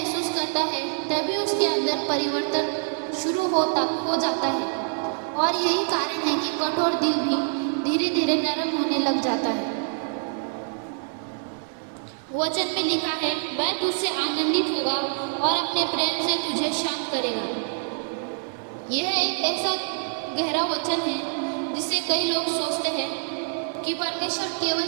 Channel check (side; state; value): left; silent; 61 dB below the other